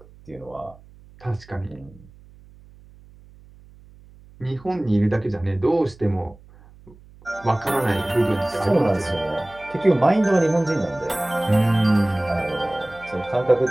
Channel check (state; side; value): noise; right; hum, 24 dB below the sound